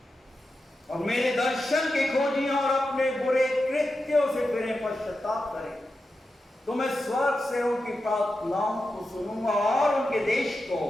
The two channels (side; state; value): both; normal; correlation 0.90